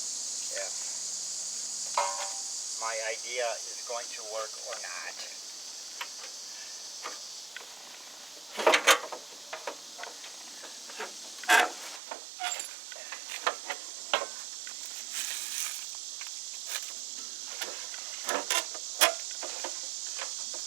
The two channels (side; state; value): left; drops out; at 12.0 s